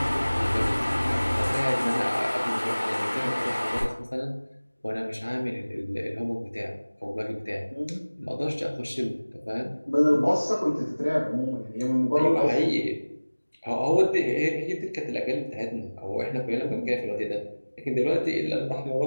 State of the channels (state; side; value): inverted; both; correlation -1.00